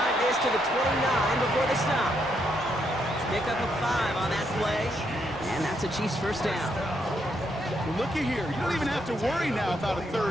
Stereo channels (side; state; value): both; normal; correlation 0.77